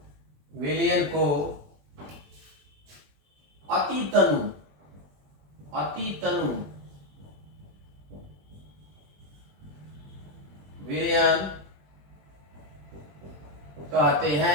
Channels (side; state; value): left; late; 21 ms